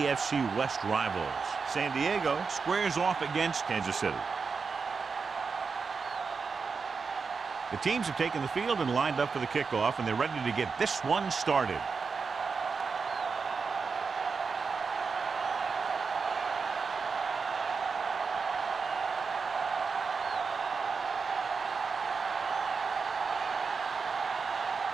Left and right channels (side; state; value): left; quieter; 5.1 dB